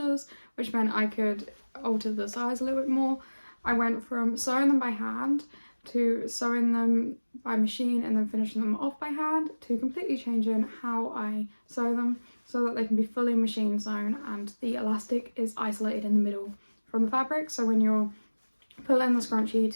which meant I could alter the size a little bit more. I went from sewing them by hand to sewing them by machine and then finishing them off by hand, to completely changing how I sew them so that they can be fully machine sewn and the elastic is isolated in the middle from the fabric. So when you're pulling the scrunchie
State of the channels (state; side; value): inverted; both; correlation -1.00